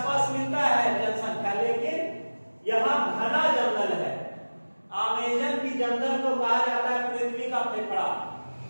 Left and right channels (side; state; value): both; inverted; correlation -1.00